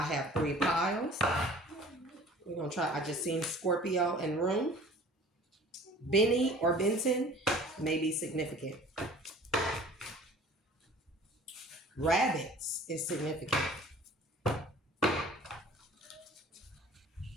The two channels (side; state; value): both; normal; correlation 0.47